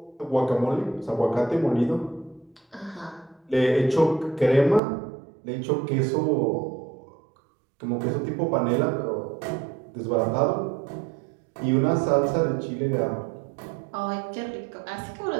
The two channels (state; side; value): drops out; left; at 4.8 s